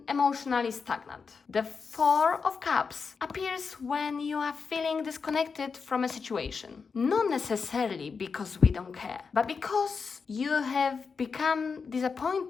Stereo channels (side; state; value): right; quieter; 5.3 dB